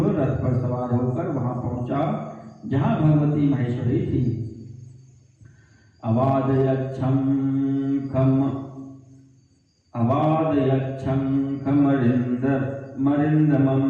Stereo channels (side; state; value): both; identical; correlation 1.00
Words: रथ पर सवार होकर वहां पहुंचा जहां भगवती महेश्वरी थी। अवादयच्छंखमरिन्दमं